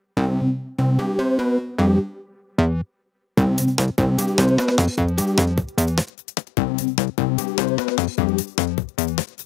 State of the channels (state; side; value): drops out; right; at 6.1 s